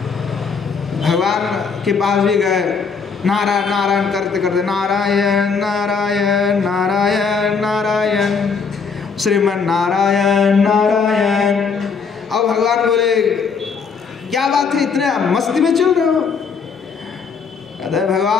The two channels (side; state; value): right; quieter; 5.5 dB